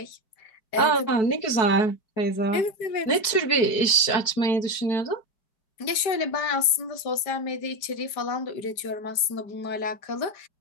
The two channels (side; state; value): right; late; 4.6 ms